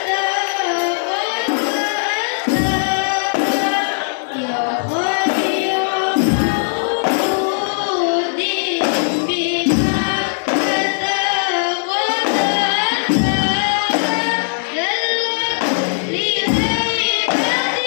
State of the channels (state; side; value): silent; right; digital silence